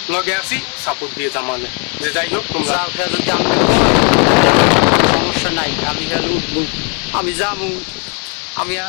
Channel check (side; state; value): right; quieter; 37.2 dB